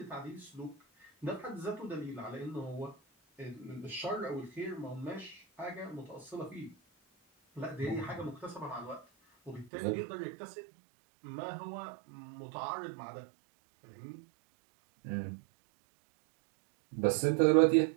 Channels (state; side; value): drops out; left; at 9.7 s